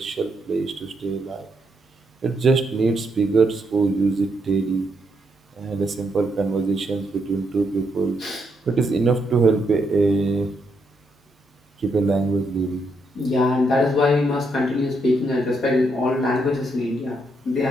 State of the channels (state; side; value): normal; both; correlation 0.78